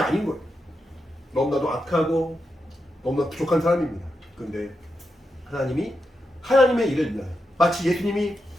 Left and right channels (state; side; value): normal; both; correlation 0.87